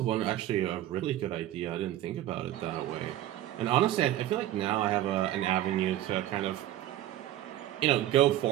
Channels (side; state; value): left; quieter; 13.4 dB